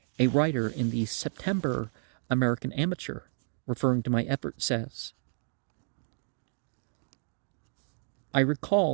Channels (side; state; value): left; silent; 57 dB below the other